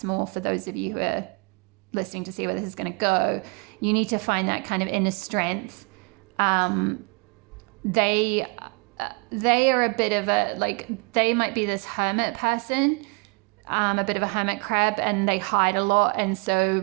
more for those of you who are listening to see where this is going to go. You need to find that kind of inner strength. They are a bit of a, like, they might be this hermit person, a bit of a hermit crab, and they hide a lot. And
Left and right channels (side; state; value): left; quieter; 30.1 dB